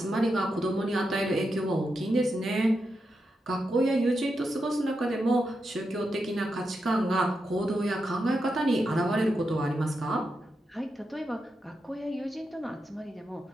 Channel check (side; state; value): both; normal; correlation 0.86